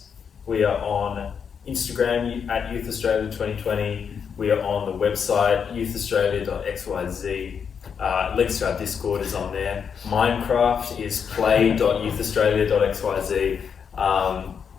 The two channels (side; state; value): right; quieter; 6.9 dB